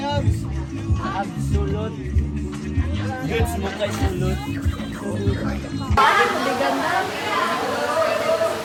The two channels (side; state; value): both; identical; correlation 1.00